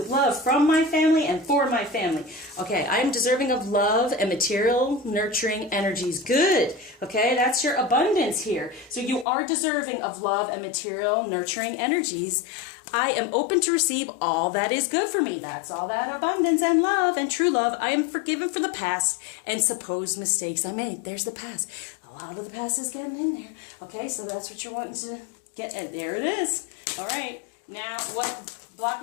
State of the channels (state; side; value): drops out; right; at 9.2 s